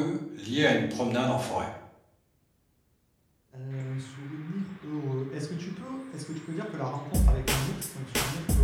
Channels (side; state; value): both; identical; correlation 1.00